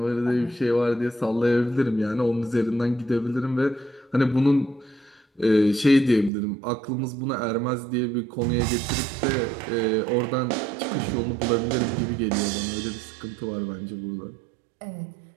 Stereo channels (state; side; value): drops out; left; at 6.3 s